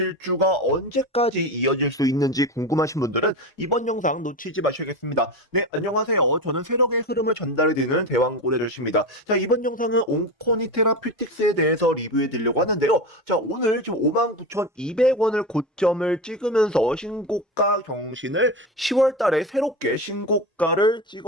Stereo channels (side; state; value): both; normal; correlation 0.22